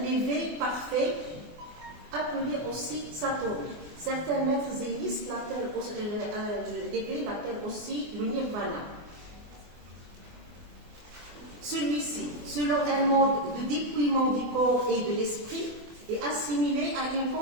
l'éveil parfait, appelé aussi Satori. Certains maîtres zénistes l'éveil l'appellent aussi le nirvana. Celui-ci, selon un mode de dépouillement du corps et de l'esprit, est assimilé à une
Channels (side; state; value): left; late; 24 ms